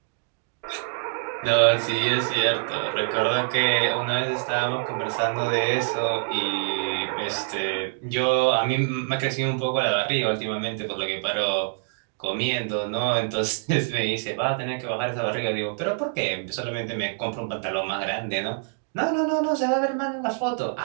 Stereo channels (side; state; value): left; silent; digital silence